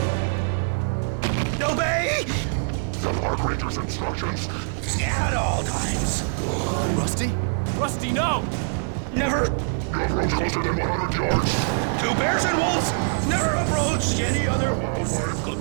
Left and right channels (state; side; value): silent; left; 63 dB below the other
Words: Obey! The park ranger's instructions. At all times. Rusty? Rusty, no! Never! You approach closer than 100 yards. 2 bears and wolves! Never approach any other wildlife